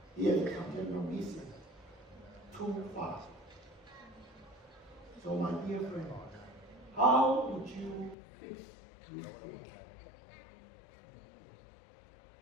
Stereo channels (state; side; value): drops out; right; at 8.2 s